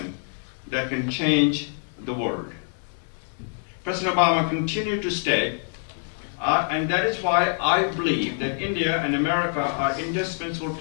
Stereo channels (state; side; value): silent; right; 59 dB below the other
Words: that can change the world." President Obama continued to state, and that is why I believe that India and America are indispensable